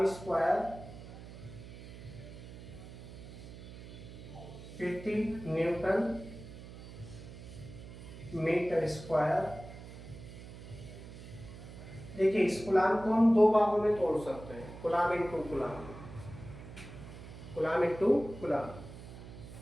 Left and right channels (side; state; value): right; noise; hum, 14 dB below the sound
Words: स्क्वायर प्रति न्यूटन मीटर स्क्वायर। देखिए, इस कूलम्ब को हम दो भागों में तोड़ सकते हैं, coulomb into coulomb, coulomb into coulomb.